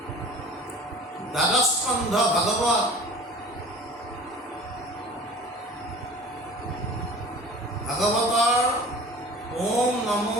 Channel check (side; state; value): both; normal; correlation 0.42